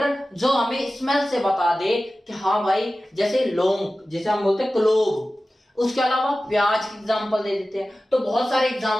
जो हमें स्मेल से बता दे कि हाँ भाई, जैसे लौंग, जैसे हम बोलते हैं क्लोव। उसके अलावा प्याज की एग्जांपल दे देते हैं। तो बहुत सारे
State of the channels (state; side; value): normal; both; correlation 0.96